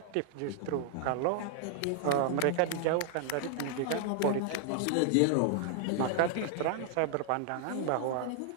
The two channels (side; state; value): both; different; correlation 0.00